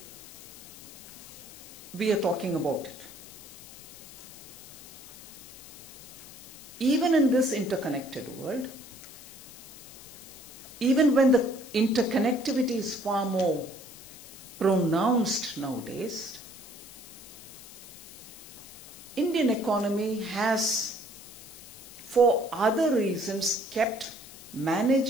we are talking about it? Even in this interconnected world, even when the interconnectivity is far more pronounced nowadays, Indian economy has, for other reasons, kept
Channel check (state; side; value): noise; left; hiss, 16 dB below the sound